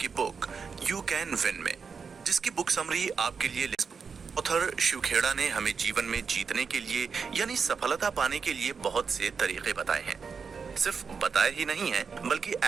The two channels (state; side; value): quieter; left; 5.7 dB